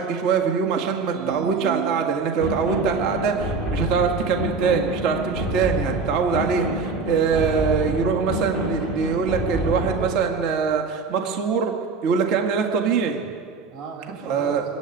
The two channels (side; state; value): left; quieter; 4.7 dB